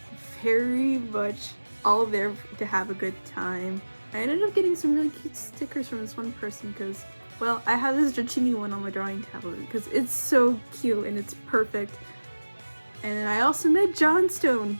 very much all there to have a good time. I ended up getting some really cute stickers from this one person because, well, I have this Dratini one on my drawing tablet because it's so cute and it's perfect. And then I also met Johnstone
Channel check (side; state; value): both; inverted; correlation -1.00